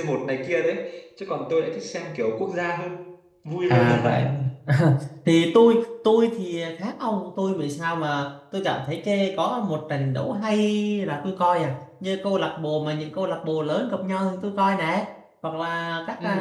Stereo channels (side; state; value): both; identical; correlation 1.00